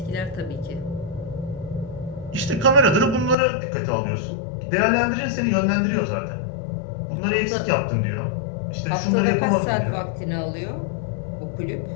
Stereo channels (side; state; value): right; drops out; at 3.4 s